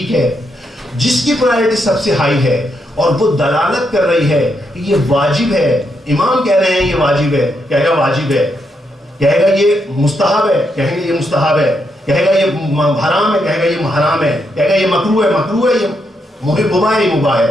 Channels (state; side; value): normal; both; correlation 0.80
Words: ہے. جس کی پرائرٹی سب سے ہائی ہے اور وہ دلالت کر رہی ہے کہ یہ واجب ہے, امام کہہ رہے ہیں یہ واجب ہے, کہے گا واجب ہے. کہے گا یہ مستحب ہے, کہیں گے یہ مستحب ہے. کہے گا یہ حرام ہے, کہے گا یہ حرام ہے. کہے گا یہ مکروہ ہے, مکروہ ہے. یہ مباح ہے, یہ مباح